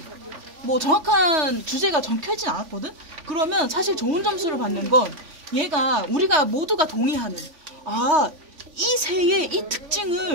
뭐 정확한 주제가 적혀있진 않았거든? 그러면 사실 좋은 점수를 받는 건 얘가 우리가 모두가 동의하는 이 새의 이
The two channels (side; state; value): left; late; 3.5 ms